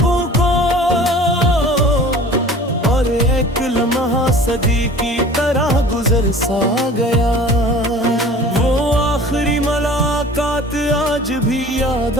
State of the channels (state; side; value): normal; both; correlation 0.44